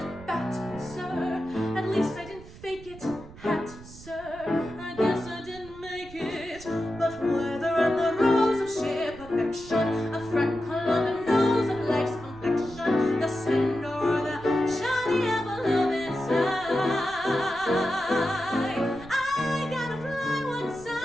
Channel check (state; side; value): noise; right; rumble, 18 dB below the sound